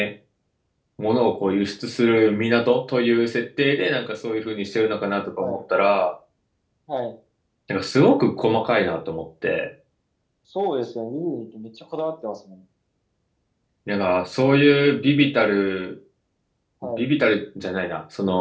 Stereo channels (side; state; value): both; identical; correlation 1.00